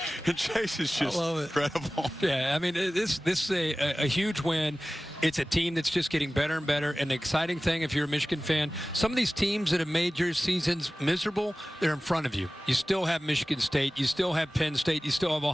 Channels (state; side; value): normal; both; correlation 0.97